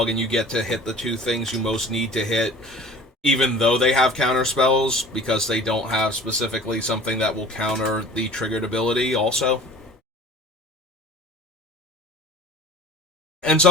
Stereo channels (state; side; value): normal; both; correlation 0.44